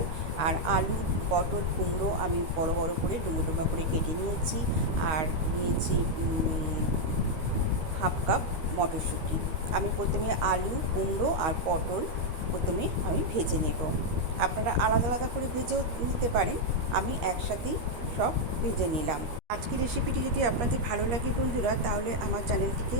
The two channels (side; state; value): left; late; 13 ms